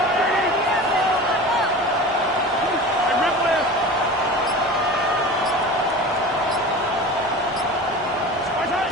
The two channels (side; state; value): both; normal; correlation 0.34